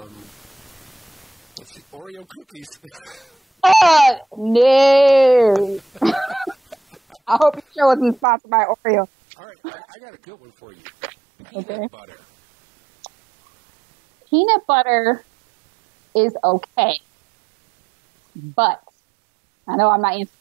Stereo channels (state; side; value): drops out; left; at 8.2 s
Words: see, Oreo cookies. No. I hope your show isn't sponsored by Oreo. All right, I got a good one for you. Peanut butter. Peanut butter is okay. But, I know I'm not answering